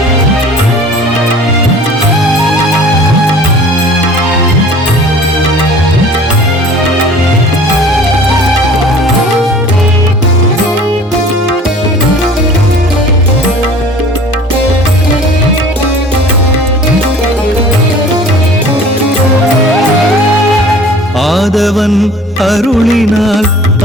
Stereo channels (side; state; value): both; normal; correlation 0.46